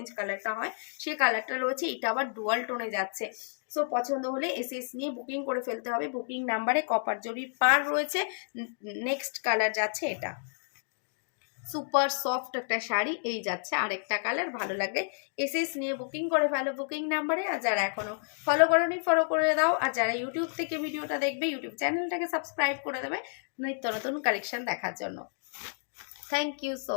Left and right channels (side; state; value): right; silent; digital silence